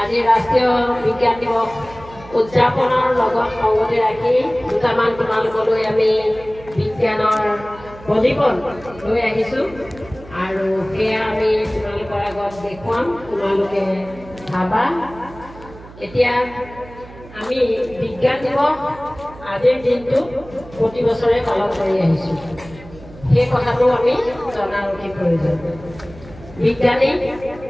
আজি ৰাষ্ট্ৰীয় বিজ্ঞান দিৱস উদযাপনৰ লগত সংগতি ৰাখি দুটামান তোমালোকলৈ আমি বিজ্ঞানৰ প্ৰদীপন লৈ আহিছোঁ আৰু সেয়া আমি তোমালোকৰ আগত দেখুৱাম, তোমালোকে চাবা। এতিয়া আমি বিজ্ঞান দিৱস আজিৰ দিনটো প্ৰতি বছৰে পালন কৰি আহিছোঁ, সেই কথাটো আমি জনাৰ অতি প্ৰয়োজন। বিজ্ঞানী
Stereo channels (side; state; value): right; noise; hum, 19 dB below the sound